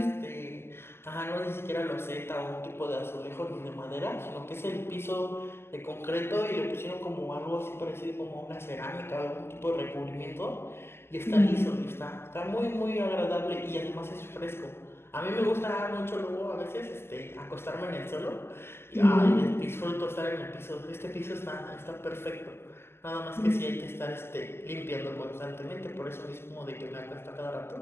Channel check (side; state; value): right; late; 0.12 ms